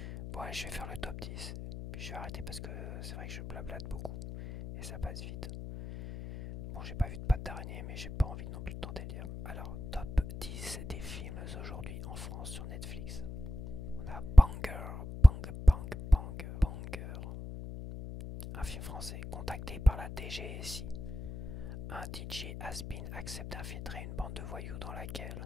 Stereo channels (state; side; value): noise; left; hum, 9 dB below the sound